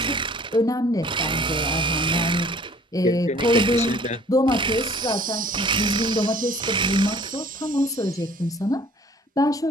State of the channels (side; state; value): both; normal; correlation 0.53